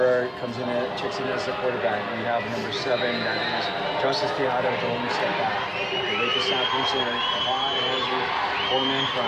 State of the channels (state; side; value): identical; both; correlation 1.00